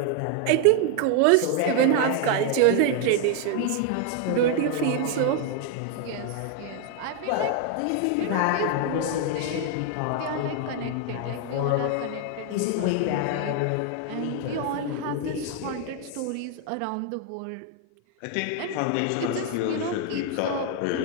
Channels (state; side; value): different; both; correlation 0.00